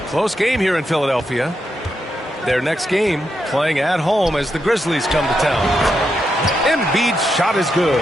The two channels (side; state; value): both; normal; correlation 0.84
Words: Close game here in Philadelphia. Their next game playing at home as the Grizzlies come to town. Embiid's shot is good.